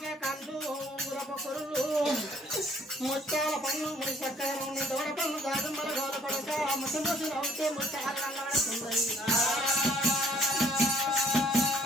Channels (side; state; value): both; normal; correlation 0.60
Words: ముత్యాల పన్ను ముడి చక్కర ఉండి దూడ పన్ను దాదుమ్మల గోల పడక ముసి నవ్వుతే ముత్యాలు అల్లాడుతుంది